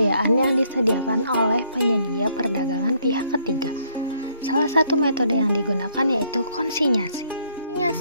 yang disediakan oleh penyedia perdagangan pihak ketiga. Salah satu metode yang digunakan yaitu konsinyasi.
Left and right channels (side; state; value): both; inverted; correlation -0.68